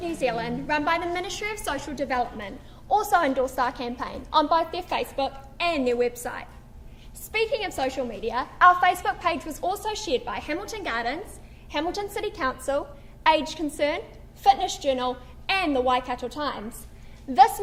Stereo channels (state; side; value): identical; both; correlation 1.00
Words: New Zealand, run by the Ministry of Social Development, also endorsed our campaign on both their Facebook and their website. Speaking of social media, our Facebook page was also shared by Hamilton Gardens, Hamilton City Council, Age Concern, Fitness Journal, and the Waikato Times. This